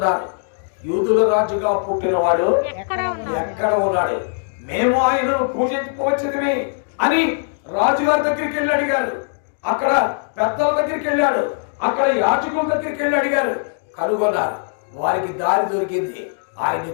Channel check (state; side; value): silent; right; digital silence